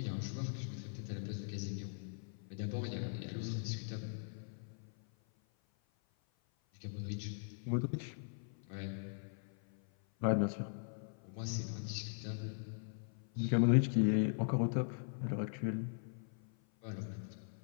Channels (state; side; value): silent; right; 51 dB below the other